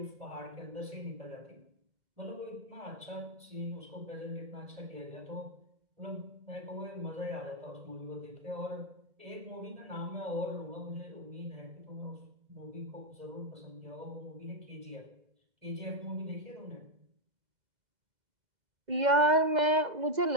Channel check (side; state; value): left; late; 2.0 ms